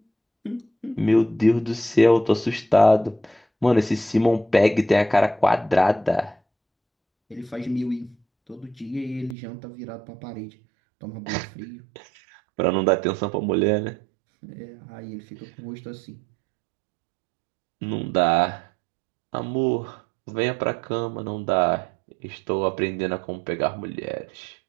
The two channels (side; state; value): left; drops out; at 9.3 s